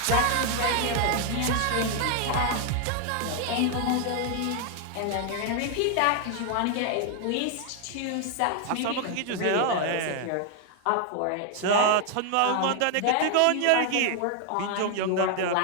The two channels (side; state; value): both; different; correlation 0.00